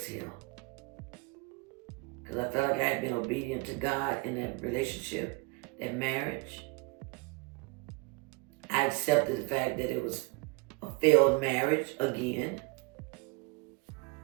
Because I felt like I had been obedient to God in that relationship, that marriage. I accepted the fact that it was a failed marriage again.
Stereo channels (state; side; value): quieter; left; 27.7 dB